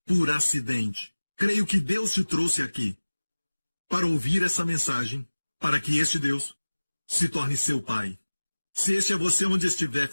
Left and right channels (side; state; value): both; inverted; correlation -1.00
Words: por acidente. Creio que Deus te trouxe aqui para ouvir essa mensagem, para que este Deus se torne seu Pai. Se este é você onde estiver,